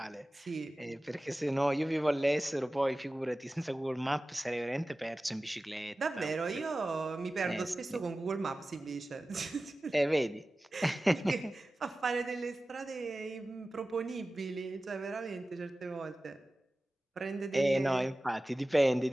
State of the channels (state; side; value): normal; both; correlation 0.96